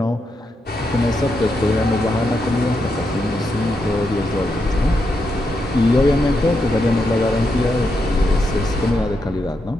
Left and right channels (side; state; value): both; normal; correlation 0.83